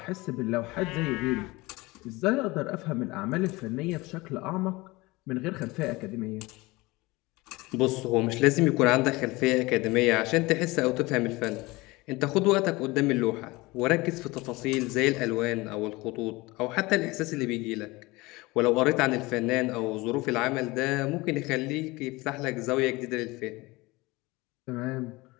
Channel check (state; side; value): quieter; right; 22.2 dB